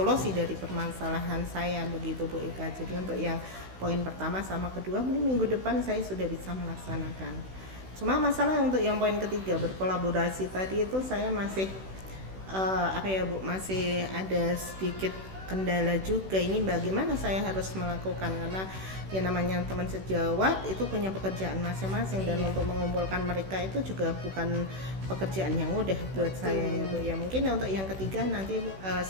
dari permasalahan saya begitu Bu Eka. Jadi untuk yang poin pertama sama kedua mungkin minggu depan saya sudah bisa melaksanakan. Cuma masalah untuk yang poin ketiga berkolaborasi tadi itu saya masih masih ada sedikit kendala juga. Ini bagaimana saya harus melakukan, karena yang namanya teman sejawat itu punya pekerjaan masing-masing dan untuk mengumpulkan mereka itu juga bukan pekerjaan yang mudah buat saya ya Bu. Ya mungkin untuk yang ketiga nanti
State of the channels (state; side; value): late; left; 16 ms